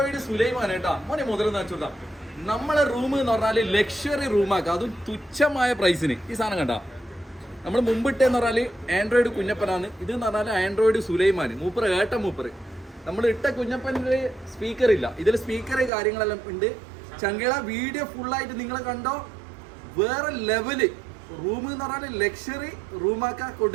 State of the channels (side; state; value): left; drops out; at 15.9 s